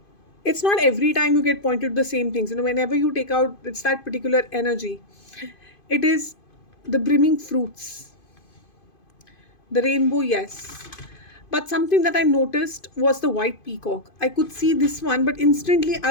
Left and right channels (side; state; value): right; late; 2.5 ms